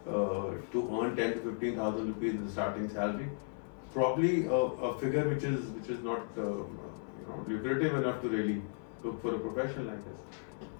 to earn 10 to 15,000 rupees as the starting salary, probably a figure which is not lucrative enough to really look for a profession like this.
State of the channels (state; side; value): silent; right; 54 dB below the other